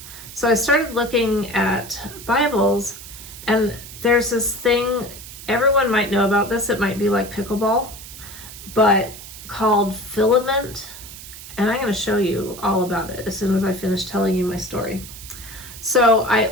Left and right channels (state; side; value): noise; right; hiss, 14 dB below the sound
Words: So I started looking at Bibles, and there's this thing, everyone might know about this, it might be like Pickleball, but called filament. And I'm going to show you all about it as soon as I finish telling you my story. So I